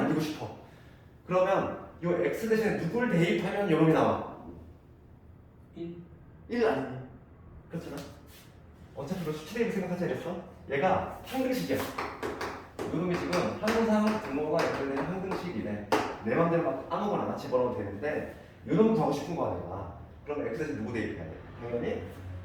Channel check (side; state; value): both; identical; correlation 1.00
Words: 싶어. 그러면 이 x 대신에 누굴 대입하면 요놈이 나와? 1 아니니? 그렇잖아. 어차피 너 수치대입을 생각하자 그랬어. 얘가 항등식이야. 요놈이 지금 항상 등호가 연결되는 항등식이네. 내 맘대로 막 아무거나 집어넣어도 되는데 요놈 더 하고 싶은 거 아니야. 그럼 x 대신 누구 대입해야 돼? 당연히